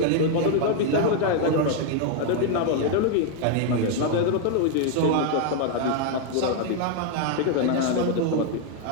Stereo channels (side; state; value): both; different; correlation 0.00